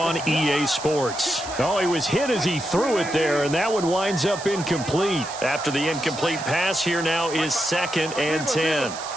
EA Sports. Oh, he was hit as he threw it there, and that one winds up incomplete. After the incomplete pass, here now is 2nd and 10.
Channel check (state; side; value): noise; right; hiss, 12 dB below the sound